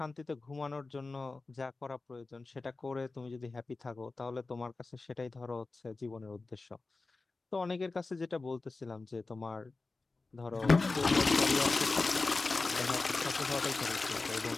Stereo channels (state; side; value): quieter; right; 3.6 dB